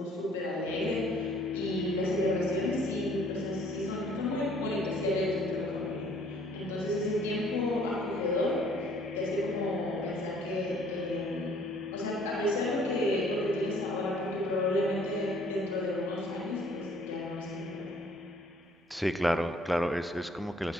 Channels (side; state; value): both; normal; correlation 0.58